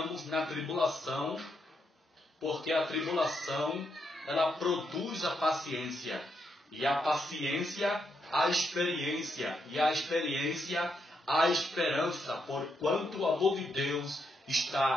na tribulação, porque a tribulação, ela produz a paciência, e a paciência, a experiência, e a experiência, a esperança, porquanto o amor de Deus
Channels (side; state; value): both; normal; correlation 0.80